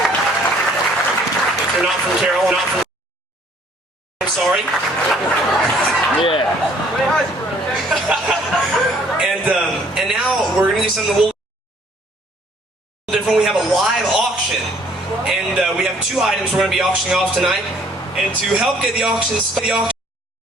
If you're not from Carol, not from... I'm sorry. Yeah. And now we're going to do something a little different. We have a live auction, and we have two items we're going to be auctioning off tonight. And to help get the auction started,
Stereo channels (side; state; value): both; normal; correlation 0.60